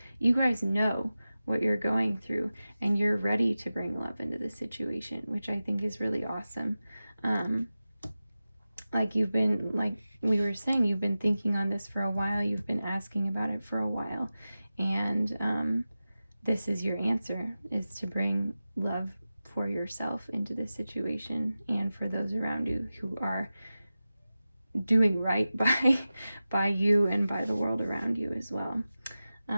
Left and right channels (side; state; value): both; inverted; correlation -0.95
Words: know what you're going through, and you're ready to bring love into the situation, which I think is really awesome. Like we were saying, you've been thinking on this for a while. You've been asking about it for a while, and this is your answer: is to bring love for yourself into this situation and for those around you who are doing right by you and by the world around you as well.